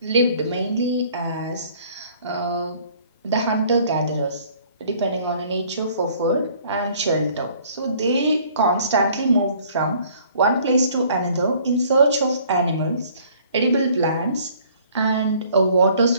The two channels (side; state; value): both; inverted; correlation -0.57